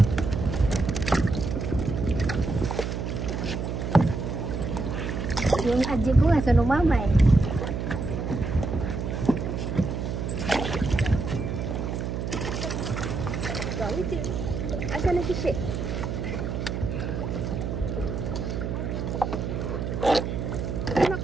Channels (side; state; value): right; noise; hum, 3 dB below the sound